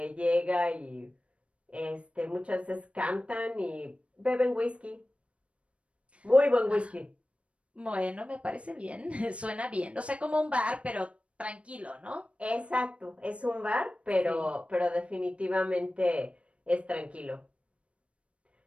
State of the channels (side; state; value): left; late; 0.061 ms